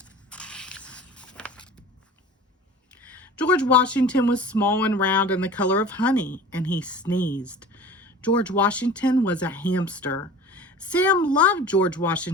George Washington was small and round and the color of honey, and he sneezed. George Washington was a hamster. Sam loved George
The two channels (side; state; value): both; normal; correlation 0.40